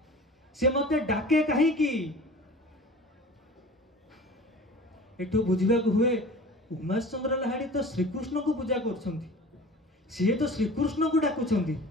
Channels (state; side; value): normal; both; correlation 0.40